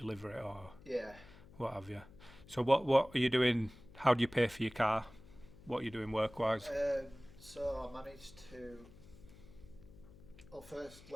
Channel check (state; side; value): noise; left; hum, 21 dB below the sound